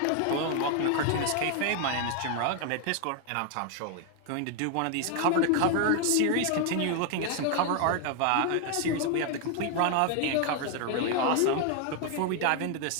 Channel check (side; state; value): both; different; correlation 0.00